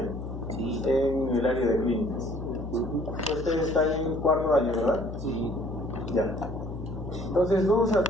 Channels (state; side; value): noise; left; hum, 8 dB below the sound